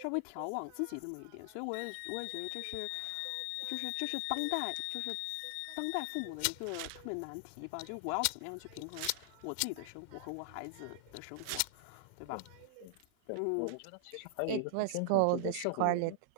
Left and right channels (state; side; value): different; both; correlation -0.01